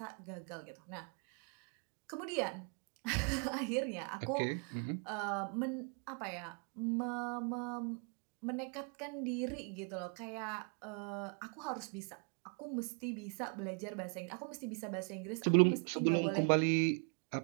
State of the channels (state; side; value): quieter; left; 39.7 dB